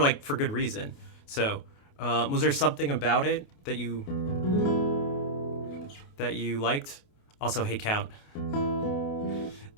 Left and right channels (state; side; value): late; right; 28 ms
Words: for good reason. So, was there something about it that you liked? Also, hey, Count.